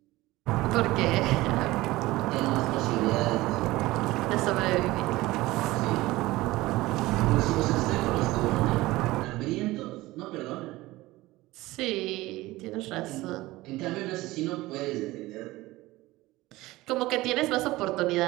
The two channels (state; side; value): quieter; left; 18.8 dB